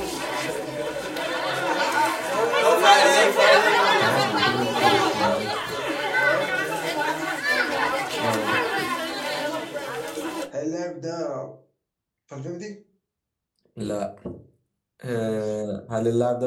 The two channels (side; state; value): both; identical; correlation 1.00